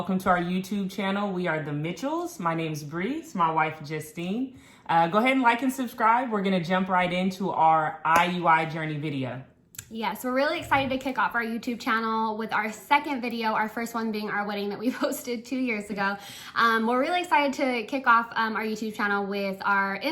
to our YouTube channel. We are the Mitchells. My name's Bree. It's my wife, Justine. Go ahead and like and subscribe. We're going to jump right into our IUI Journey video. Yes, we're really excited to kick off our YouTube channel with our second video, our first one being our wedding that we posted 2 years ago. We're really excited to kick off our YouTube channel with our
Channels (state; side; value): identical; both; correlation 1.00